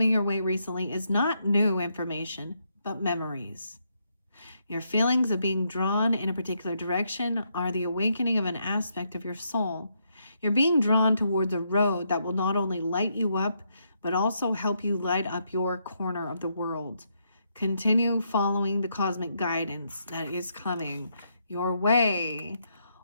your way recently is not new information, but memories. Your feelings of being drawn in a particular direction are the awakening of an aspect of your soul. You're being drawn towards a road that will not only light you up, but also help you light up your corner of the world. Continue following the cosmic guidance that is coming your way.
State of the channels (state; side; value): inverted; both; correlation -0.77